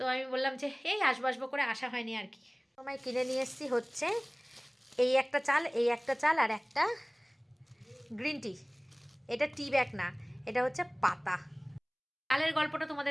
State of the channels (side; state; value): both; identical; correlation 1.00